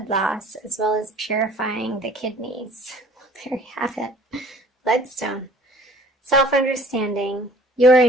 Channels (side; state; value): both; normal; correlation 0.51